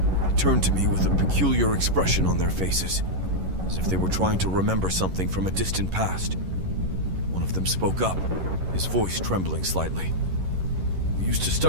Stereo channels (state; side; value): late; left; 11 ms